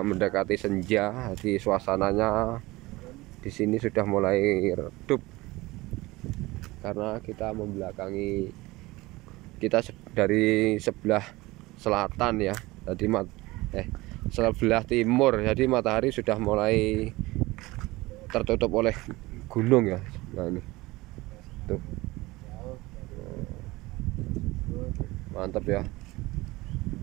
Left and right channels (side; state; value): left; quieter; 20.7 dB